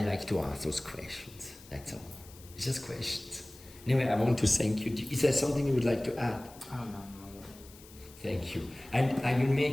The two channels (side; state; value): left; noise; hiss, 21 dB below the sound